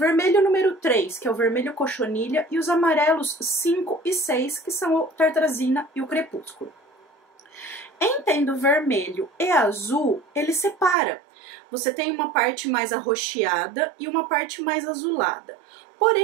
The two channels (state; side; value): drops out; left; at 11.0 s